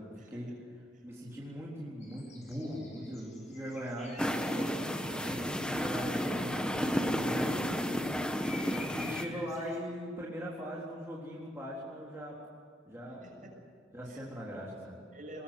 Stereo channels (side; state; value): both; normal; correlation 0.80